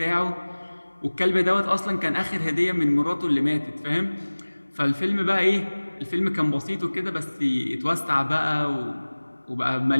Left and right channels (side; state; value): both; inverted; correlation -1.00